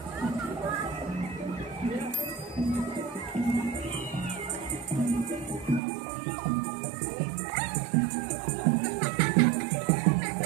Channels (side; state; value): left; drops out; at 5.8 s